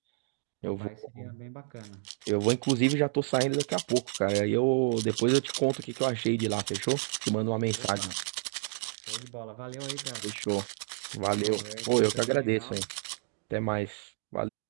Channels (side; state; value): left; silent; digital silence